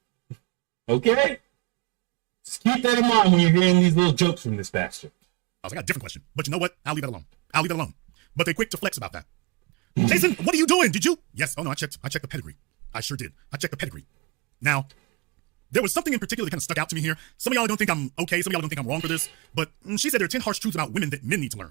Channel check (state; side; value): quieter; left; 26.1 dB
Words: Okay? Just keep that in mind when you're hearing these little jokes from this bastard. I got a different question, but you know what? I'll leave it alone. But they're quick to flex about that. Jason, what are you doing? Did you? Yes. Oh no, I checked the pedigree. I sure did. I checked the pedigree. Now, there was something in particular that kind of stuck out to me here. Some of y'all don't think I'm okay. Some of y'all don't think I'm wrong for this. But she said there are 10 harsh truths about women that men need to